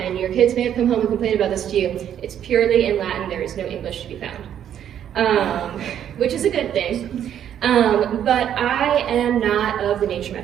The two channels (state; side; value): quieter; left; 9.9 dB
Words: your kids may have come home and complained about this to you, it's purely in Latin. There is no English to be found, which is a good thing. But I am not of the nature